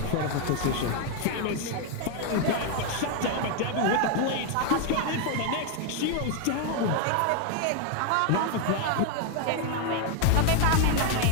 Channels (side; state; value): both; different; correlation 0.01